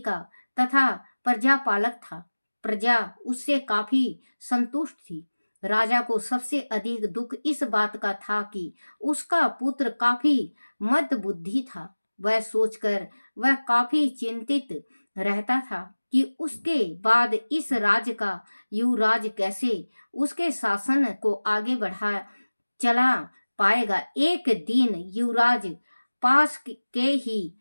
तथा प्रजापालक था। प्रजा उससे काफी संतुष्ट थी। राजा को सबसे अधिक दुख इस बात का था कि उसका पुत्र काफी मंदबुद्धि था। वह सोचकर वह काफी चिंतित रहता था कि उसके बाद इस राज्य का युवराज कैसे उसके शासन को आगे बढ़ा चला पाएगा। एक दिन युवराज पास के ही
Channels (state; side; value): inverted; both; correlation -1.00